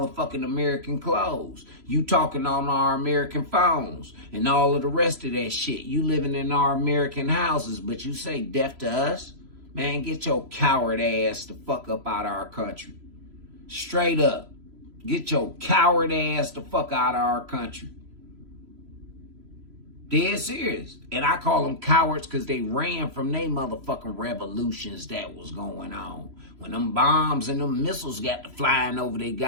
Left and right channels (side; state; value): left; late; 3.0 ms